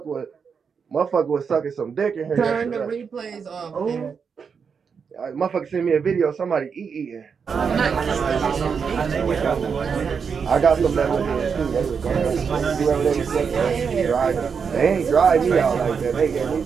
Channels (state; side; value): quieter; left; 6.1 dB